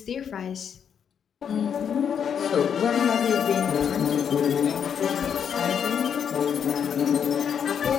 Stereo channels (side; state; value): right; quieter; 7.8 dB